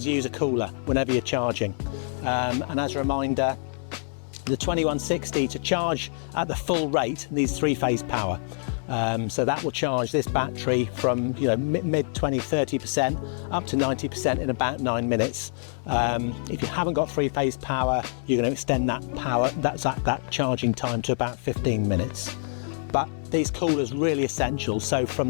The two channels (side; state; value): right; silent; digital silence